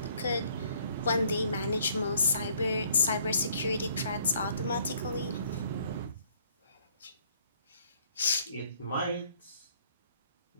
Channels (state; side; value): inverted; both; correlation -0.64